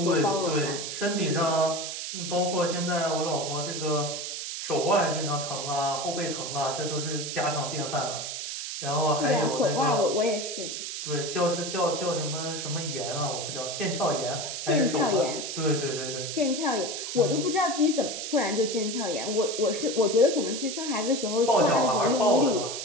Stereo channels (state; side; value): noise; right; hiss, 5 dB below the sound